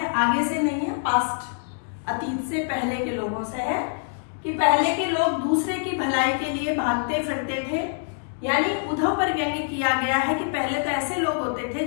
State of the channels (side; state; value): right; silent; digital silence